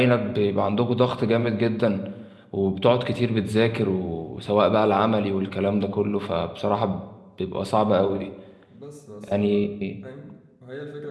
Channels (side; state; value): both; identical; correlation 1.00